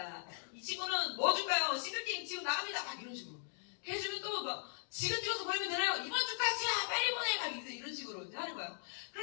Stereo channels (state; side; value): silent; right; digital silence